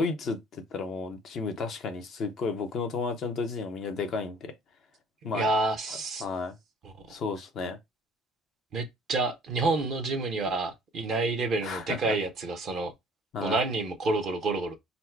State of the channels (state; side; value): normal; both; correlation 0.53